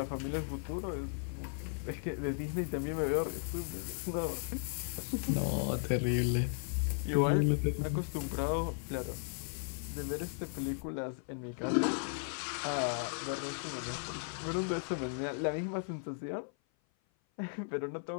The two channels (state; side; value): silent; right; 54 dB below the other